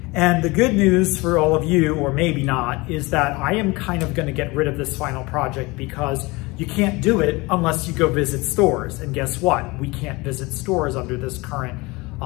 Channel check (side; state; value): right; quieter; 23.8 dB